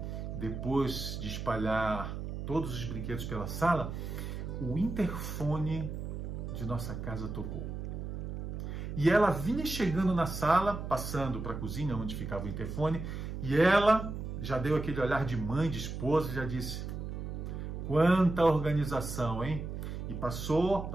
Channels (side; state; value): right; noise; hum, 6 dB below the sound